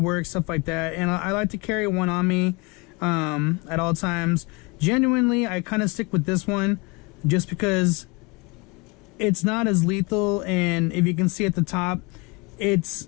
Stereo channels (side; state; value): right; quieter; 27.7 dB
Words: stuff like that, and I like to carry one on me at all times. Genuinely, I kind of stick with this one just because it's not as lethal, and if you can see at the top,